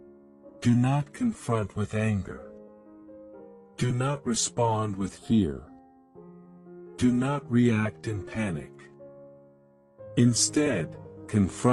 Do not confront with anger. Do not respond with fear. Do not react in panic. Instead,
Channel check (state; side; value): identical; both; correlation 1.00